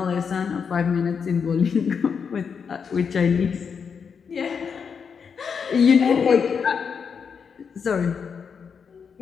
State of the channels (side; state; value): right; quieter; 6.3 dB